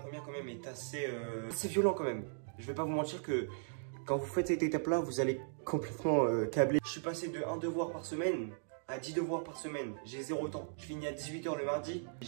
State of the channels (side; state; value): left; silent; digital silence